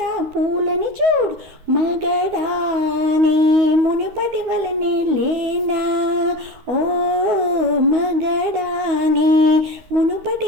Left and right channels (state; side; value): late; left; 12 ms